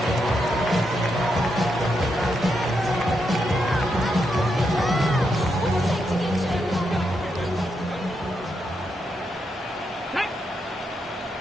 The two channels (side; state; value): both; normal; correlation 0.82